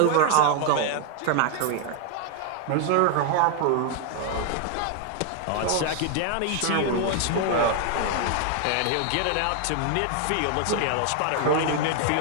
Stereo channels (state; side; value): different; both; correlation 0.00